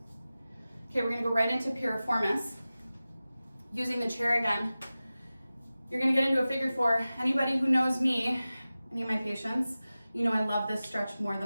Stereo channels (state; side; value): inverted; both; correlation -0.96